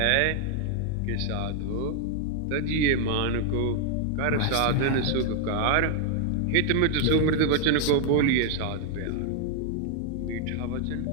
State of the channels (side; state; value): both; different; correlation 0.00